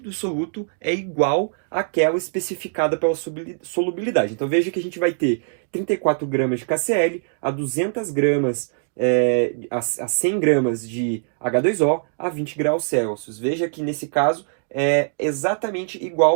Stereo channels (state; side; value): silent; left; digital silence